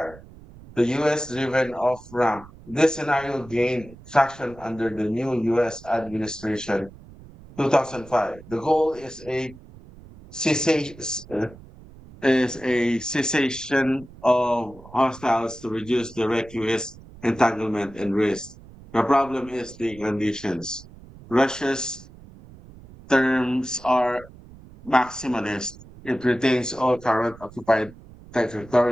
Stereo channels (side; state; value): right; noise; rumble, 20 dB below the sound